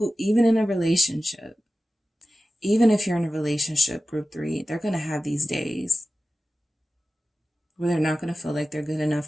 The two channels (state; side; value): normal; both; correlation 0.94